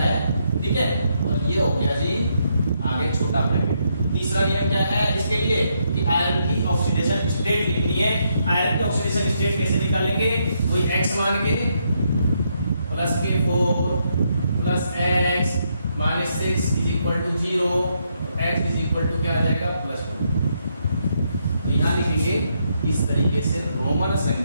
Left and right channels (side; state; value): both; inverted; correlation -0.77